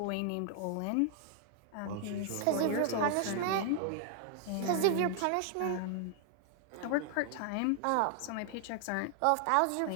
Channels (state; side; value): different; both; correlation 0.00